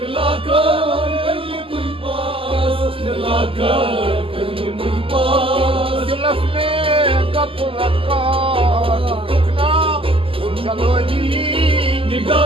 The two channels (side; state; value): left; late; 0.26 ms